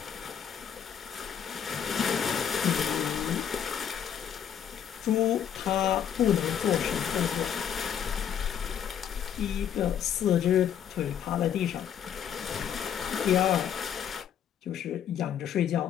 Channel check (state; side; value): quieter; right; 8.9 dB